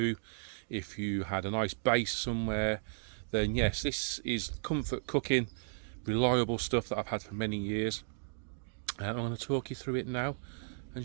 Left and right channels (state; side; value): silent; left; digital silence